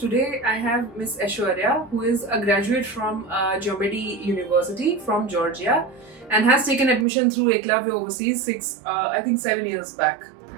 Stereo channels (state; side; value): drops out; left; at 7.1 s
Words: I have Miss Aishwarya, who is a graduate from Geomedi University from Georgia and has taken admission through Eklavya Overseas 7 years back.